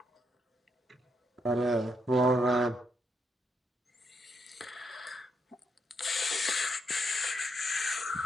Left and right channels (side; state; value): both; normal; correlation 0.78